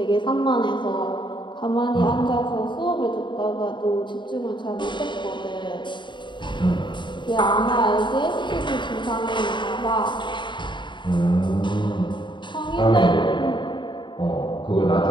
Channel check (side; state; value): right; late; 0.23 ms